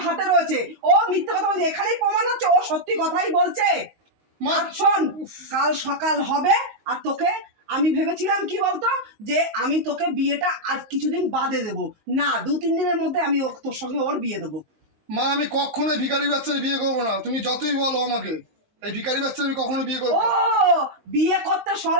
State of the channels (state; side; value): late; left; 19 ms